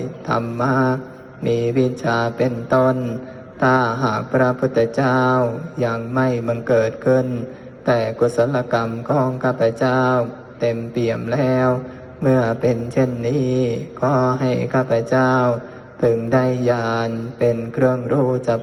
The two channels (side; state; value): both; identical; correlation 1.00